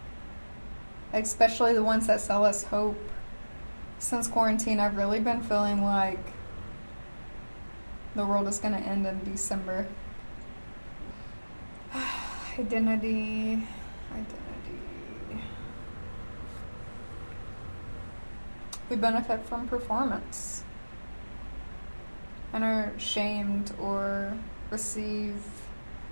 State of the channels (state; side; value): inverted; both; correlation -1.00